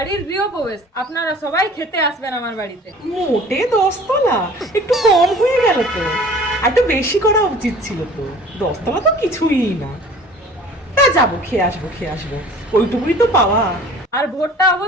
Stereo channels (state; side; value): normal; both; correlation 0.47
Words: গৃহপ্রবেশ, আপনারা সবাই খেতে আসবেন আমার বাড়িতে। মোটে 10 তলা একটু কম হয়ে গেল তো, আর একটু বেশি করা উচিত ছিল তো। 10 তলা তো কিছুই না। তা যাবো, খেয়ে আসবো, ওইটুকুই তো পাওয়া। আর ভোটটা